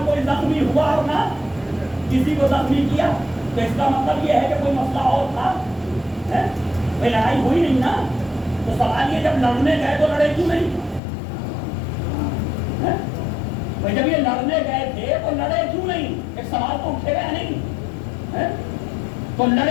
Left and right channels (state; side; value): drops out; right; at 11.0 s